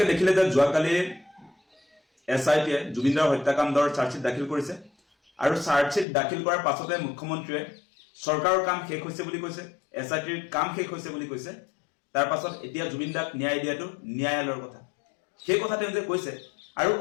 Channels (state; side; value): drops out; right; at 6.1 s